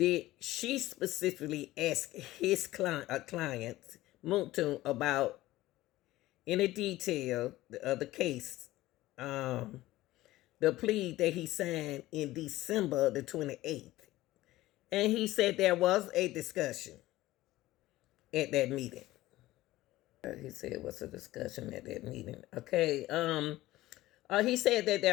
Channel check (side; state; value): right; quieter; 16.9 dB